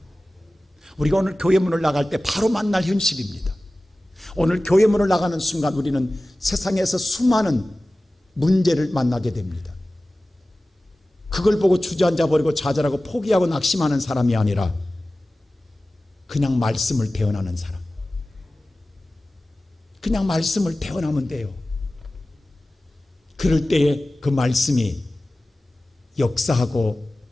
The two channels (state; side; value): normal; both; correlation 0.96